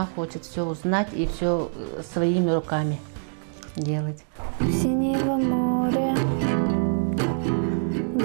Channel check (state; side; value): silent; left; digital silence